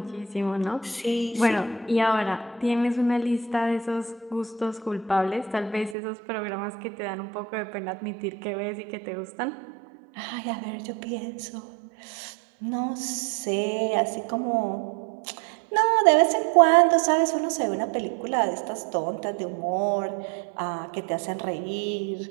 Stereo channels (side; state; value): left; drops out; at 6.0 s